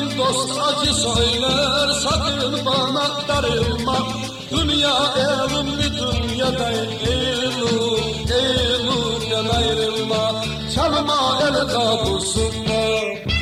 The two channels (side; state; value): both; identical; correlation 1.00